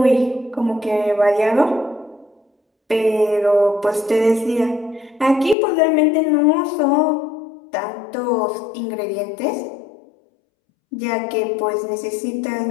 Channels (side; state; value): right; drops out; at 5.6 s